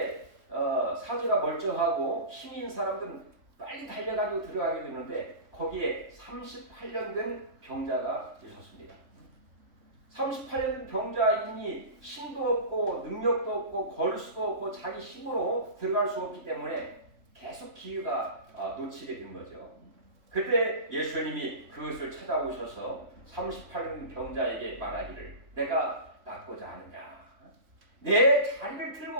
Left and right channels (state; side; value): late; left; 3.4 ms